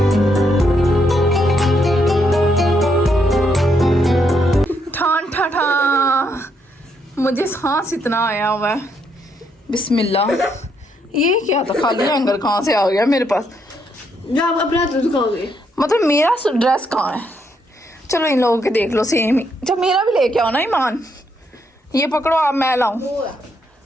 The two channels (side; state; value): both; normal; correlation 0.76